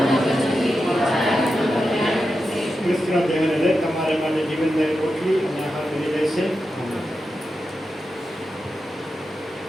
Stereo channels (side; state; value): both; normal; correlation 0.89